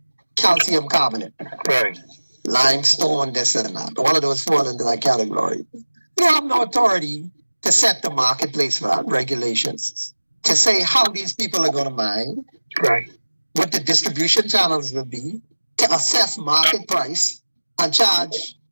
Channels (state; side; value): inverted; both; correlation -1.00